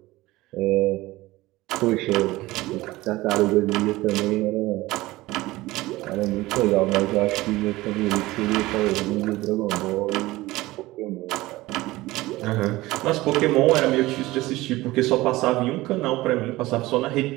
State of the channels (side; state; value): left; quieter; 18.9 dB